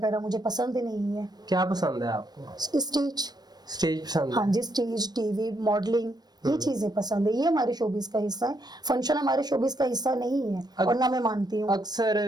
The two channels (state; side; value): late; left; 0.19 ms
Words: मुझे पसंद नहीं है। क्या पसंद है आपको? स्टेज। स्टेज पसंद हाँ है? जी, स्टेज, टीवी, मॉडलिंग, ये चीजें पसंद है, ये हमारे शोबिस का हिस्सा है। फंक्शन हमारे शोबिस का हिस्सा नहीं है और ना मैं मानती हूँ।